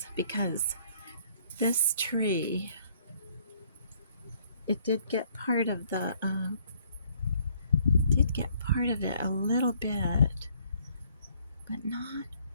because this tree, it did get part of it a little bit, but not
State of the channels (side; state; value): both; inverted; correlation -0.64